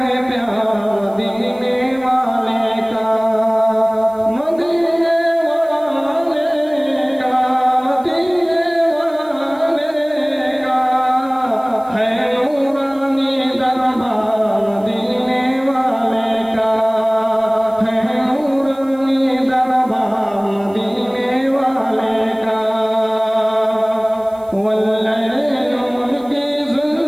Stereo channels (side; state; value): right; noise; hiss, 29 dB below the sound